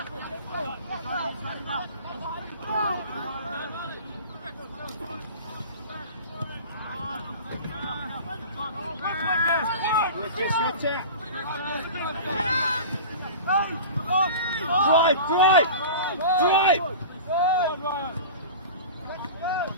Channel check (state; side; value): inverted; both; correlation -0.35